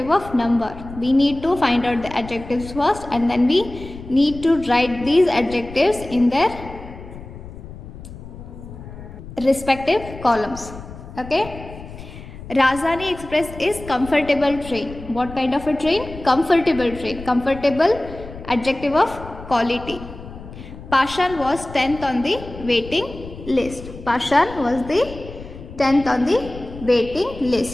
of number. We need to find out the adjectives first, and then we need to write these adjectives in their respective columns. Okay. Rajdhani Express is comfortable train. What kind of a train? Comfortable train. Comfortable, adjective of quality. Pashan was 10th on the waiting list. Pashan was the 10th on the waiting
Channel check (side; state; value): left; noise; rumble, 14 dB below the sound